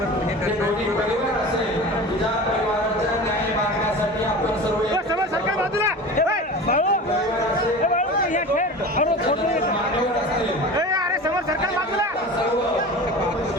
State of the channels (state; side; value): normal; both; correlation 0.34